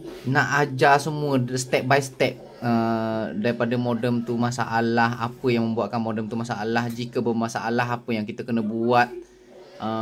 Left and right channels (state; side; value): identical; both; correlation 1.00